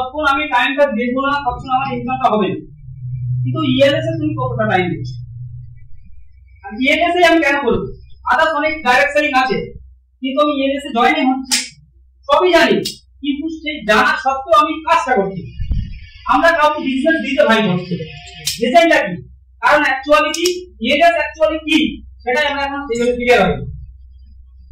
আমি টাইমটা দেবো না তখন আমার ইনকামটা হবে না। কিন্তু ইএলএস এ তুমি কতটা টাইম দিচ্ছ? আর ইএলএস এ আমি কেন করবো? আদার্স অনেক ডাইরেক্ট সেলিং আছে, কিন্তু আমি ইএলএস এ জয়েন হচ্ছি, সবই জানি, কিন্তু সেই জানা সত্ত্বেও আমি কাজটা করছি। আমরা কাউকে বিজনেস দিতে ভাই হচ্ছে রিজনটা কি? কারণ অ্যাকচুয়ালি কি ইএলএস অ্যাকচুয়ালি কি সেটাই আমরা এখন সেইভাবে ক্লিয়ার হই।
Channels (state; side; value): identical; both; correlation 1.00